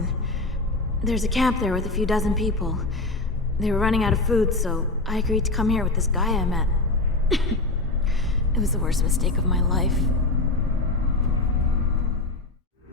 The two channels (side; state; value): right; quieter; 3.2 dB